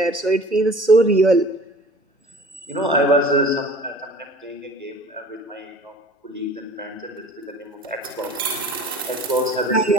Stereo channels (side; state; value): both; normal; correlation 0.45